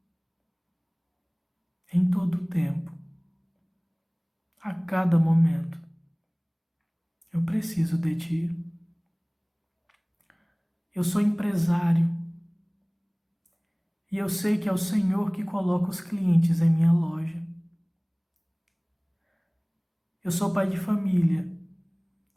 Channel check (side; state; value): both; identical; correlation 1.00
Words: Em todo o tempo, a cada momento, eu preciso de ti. Eu sou empresário e eu sei que é o Senhor que coloca os clientes em minha loja. Eu sou pai de família